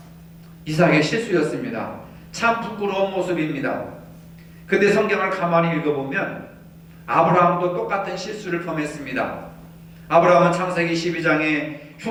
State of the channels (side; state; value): both; identical; correlation 1.00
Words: 이삭의 실수였습니다. 참 부끄러운 모습입니다. 근데 성경을 가만히 읽어보면 아브라함도 똑같은 실수를 범했습니다. 아브라함은 창세기 12장에